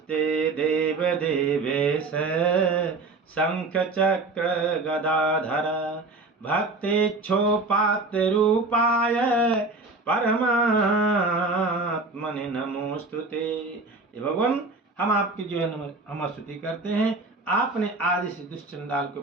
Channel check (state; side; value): quieter; left; 3.5 dB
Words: देव देवेश शंख चक्र गदाधर भक्तेच्छोपात्र रूपाय परमात्मने नमोस्तुते। भगवान हम आपकी जो है हम स्तुति करते हैं। आपने आदि से दुष्चंडाल के